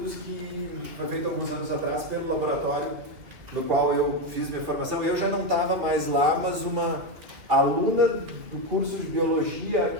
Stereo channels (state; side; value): late; left; 2.7 ms